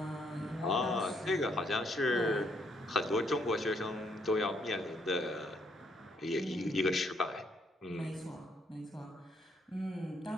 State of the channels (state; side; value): normal; both; correlation 0.71